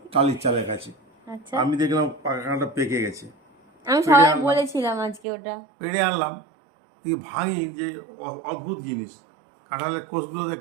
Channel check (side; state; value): left; drops out; at 5.2 s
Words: টালির চালের কাছে। আচ্ছা, আমি দেখলাম কাঁঠালটা পেকে গেছে। আমি পেড়ে সবাই আনলাম, বলেছিলাম আজকে ওটা। পেড়ে আনলাম, দিয়ে ভাঙি যে অদ্ভুত জিনিস, কাঁঠালের কোষগুলো দেখ